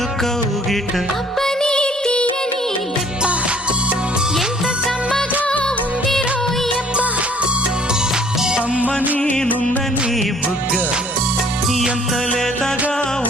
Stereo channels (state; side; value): normal; both; correlation 0.57